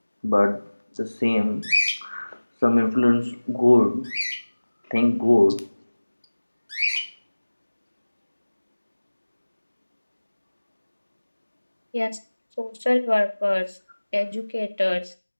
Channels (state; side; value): inverted; both; correlation -1.00